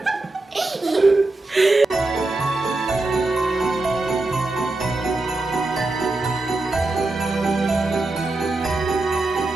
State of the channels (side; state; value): left; quieter; 3.0 dB